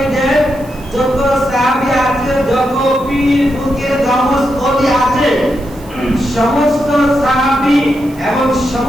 দেন। যত সাহাবী আছে, যত পীর ফকির গাউস ওলি আছে, সমস্ত সাহাবী এবং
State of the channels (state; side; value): noise; right; hiss, 24 dB below the sound